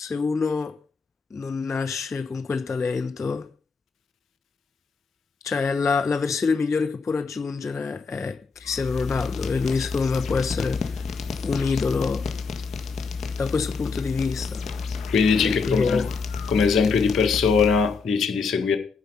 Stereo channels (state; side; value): quieter; right; 4.9 dB